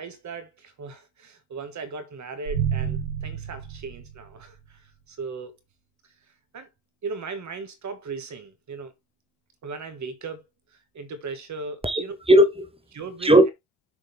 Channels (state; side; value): normal; both; correlation 0.49